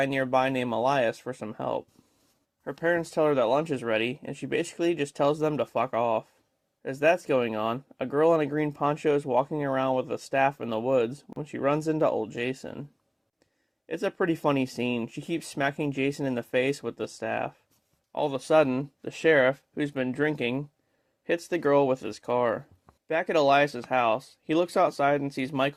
nearby named Elias for some help. Her parents tell her that lunch is ready, and she basically just tells them to fuck off. As that's going on, a girl in a green poncho is walking around with a staff in the woods when she runs into old Jason. It's a pretty funny scene. She keeps smacking Jason in the face with the staff. All of a sudden, the sheriff, who's been drinking, hits the girl with his car. Back at Elias's house, he looks outside and sees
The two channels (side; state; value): both; identical; correlation 1.00